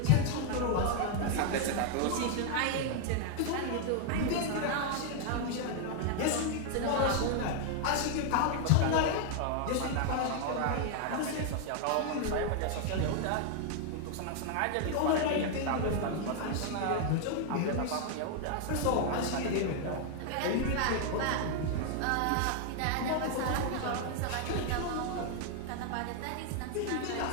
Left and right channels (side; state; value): both; different; correlation 0.00